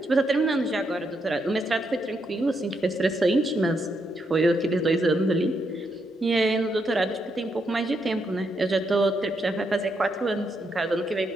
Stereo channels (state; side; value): normal; both; correlation 0.79